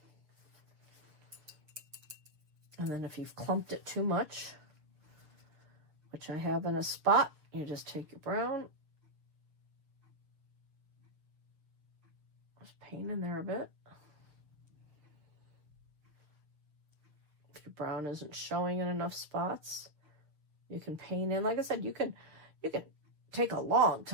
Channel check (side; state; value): left; late; 6.7 ms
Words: And then if you've clumped it too much, which I have in a spot, you just take your brown, just paint in there a bit. If your brown isn't showing in enough spots, you can paint in. Like I said, you can take a long